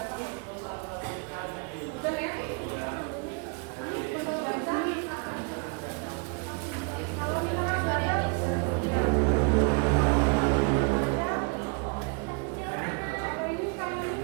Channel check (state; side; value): quieter; left; 35.7 dB